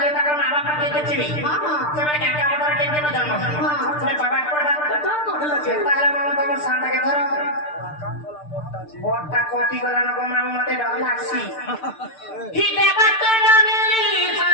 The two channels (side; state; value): right; late; 6.7 ms